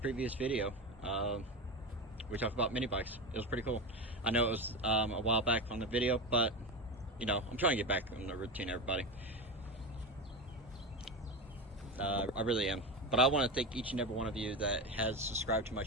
previous video. We talked about mini bikes. It was pretty cool. I know it was a while back on the video, but you know, I'm trying to get back on the routine, everybody. I really am. But I want to thank each and every one of you that has subscribed to my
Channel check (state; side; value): normal; both; correlation 0.20